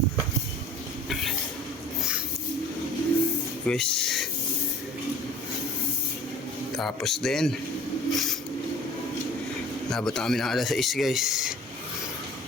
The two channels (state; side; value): normal; both; correlation 0.46